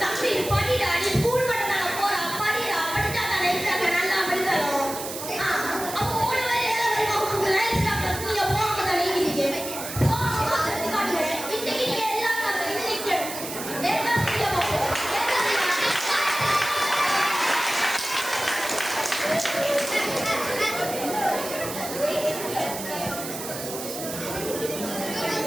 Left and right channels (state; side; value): noise; right; hiss, 8 dB below the sound